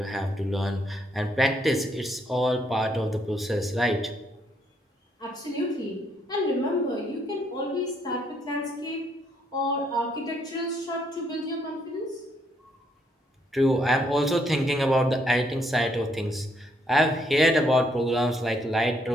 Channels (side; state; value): both; normal; correlation 0.72